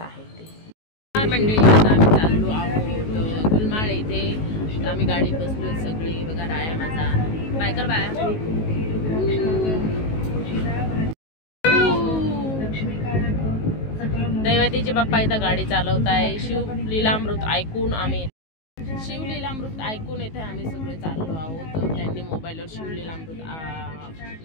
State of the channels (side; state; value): right; late; 19 ms